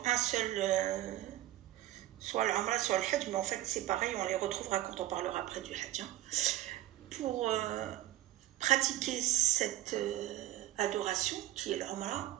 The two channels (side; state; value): left; quieter; 14.8 dB